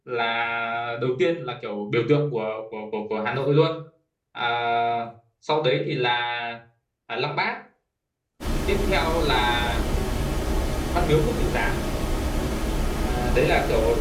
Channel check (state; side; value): identical; both; correlation 1.00